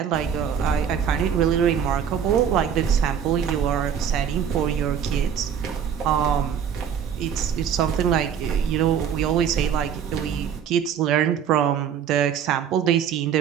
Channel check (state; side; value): quieter; left; 8.2 dB